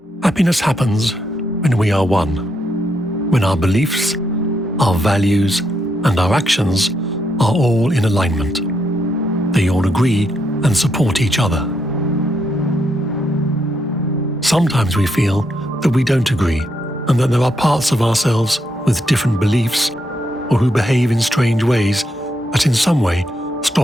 Happiness happens when we are one, when our beliefs, our values, and our actions are all in alignment. They all agree and support each other. Sometimes we feel that we don't agree and that there are parts of ourselves with different beliefs or who behave in strange ways that in some way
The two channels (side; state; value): both; normal; correlation 0.79